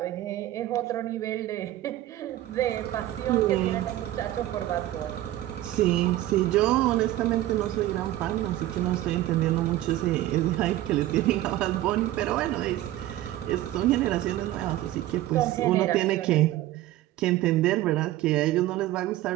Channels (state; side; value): quieter; left; 14.9 dB